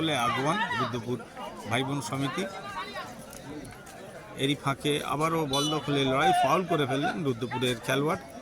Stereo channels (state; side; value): identical; both; correlation 1.00